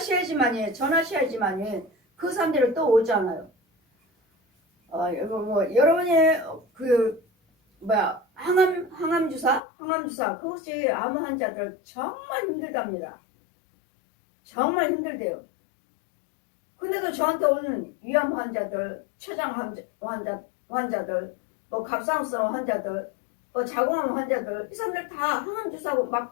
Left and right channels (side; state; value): right; drops out; at 9.6 s